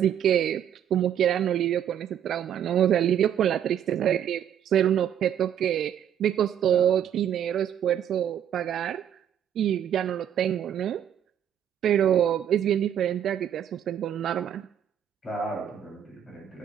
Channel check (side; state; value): left; quieter; 9.6 dB